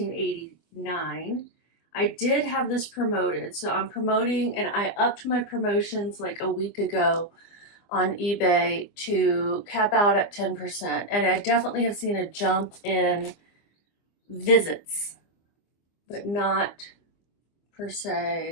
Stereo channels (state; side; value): late; right; 24 ms